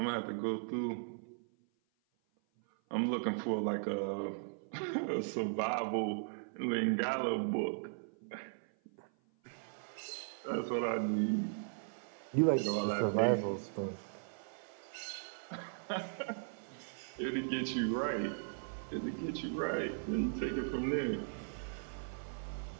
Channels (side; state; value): left; silent; 53 dB below the other